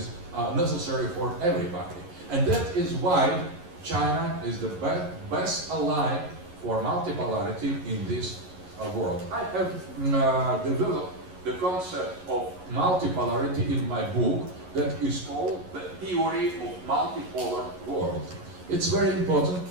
necessary for everybody. And that is why China is the best ally for multipolarity in this world. I have developed the concept of multipolarity in my book that is called The Theory of Multipolar World. It's very important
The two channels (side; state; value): left; late; 11 ms